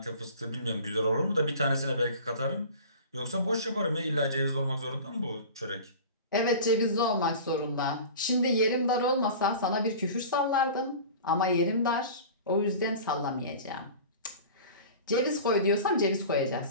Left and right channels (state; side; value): inverted; both; correlation -0.38